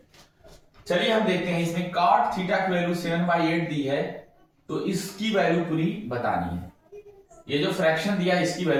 चलिए हम देखते हैं। इसमें cot थीटा की वैल्यू 7/8 दी है, तो इसकी वैल्यू पूरी बतानी है। ये जो फ्रैक्शन दिया है इसकी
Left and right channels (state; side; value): identical; both; correlation 1.00